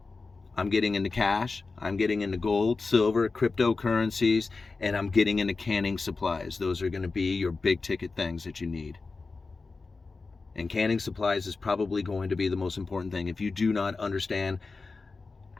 I'm getting into cash, I'm getting into gold, silver, cryptocurrencies, and I'm getting into canning supplies. Those are going to be your big ticket things that you need. And canning supplies is probably going to be the most important thing. If you do not understand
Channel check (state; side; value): quieter; right; 4.0 dB